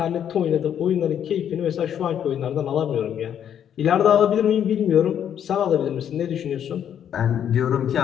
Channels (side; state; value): right; quieter; 9.3 dB